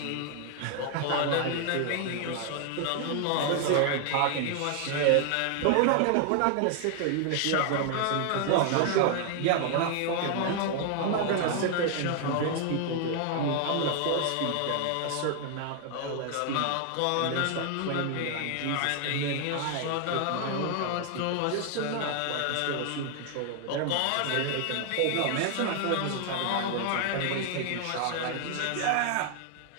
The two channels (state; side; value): different; both; correlation 0.00